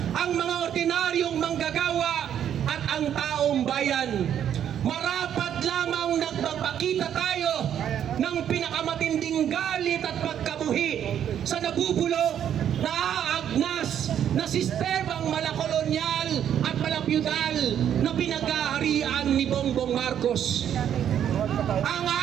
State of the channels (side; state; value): left; quieter; 9.6 dB